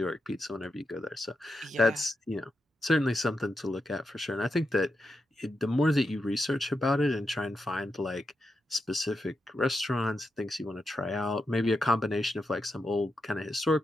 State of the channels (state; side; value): normal; both; correlation 0.86